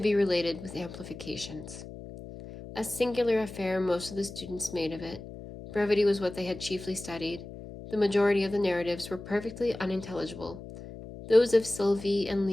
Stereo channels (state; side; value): noise; left; hum, 13 dB below the sound